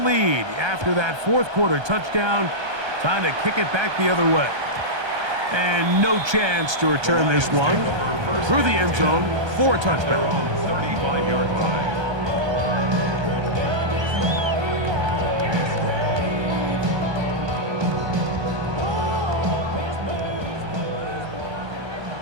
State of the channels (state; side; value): late; left; 1.3 ms